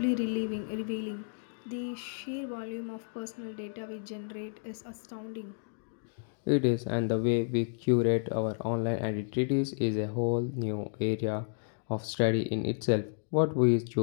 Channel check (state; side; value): silent; right; digital silence